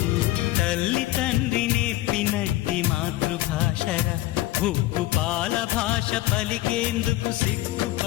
తల్లి తండ్రి నేర్పినట్టి మాతృభాషరా ఉప్పు పాల భాష పలికేందుకు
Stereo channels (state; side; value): quieter; right; 16.6 dB